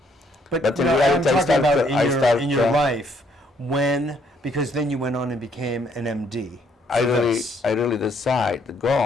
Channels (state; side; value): normal; both; correlation 0.68